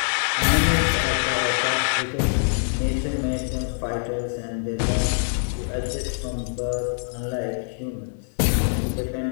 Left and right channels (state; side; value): silent; right; 62 dB below the other